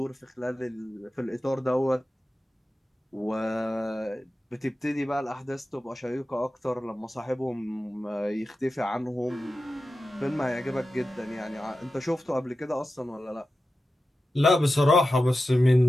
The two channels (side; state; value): both; normal; correlation 0.92